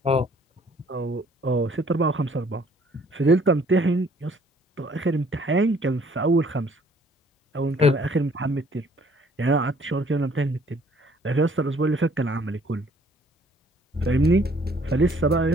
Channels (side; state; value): both; normal; correlation 0.60